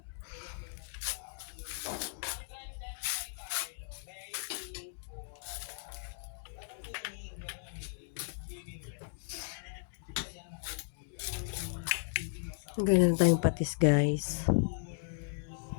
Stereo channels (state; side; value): silent; right; digital silence